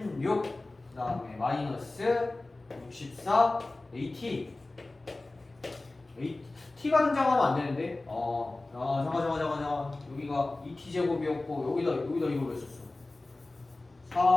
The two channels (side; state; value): right; quieter; 3.0 dB